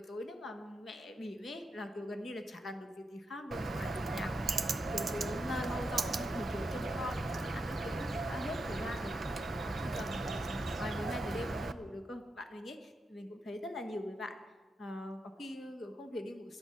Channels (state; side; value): normal; both; correlation 0.85